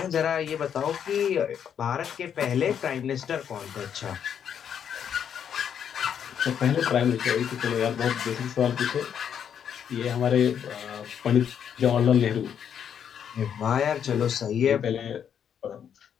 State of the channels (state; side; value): quieter; right; 8.4 dB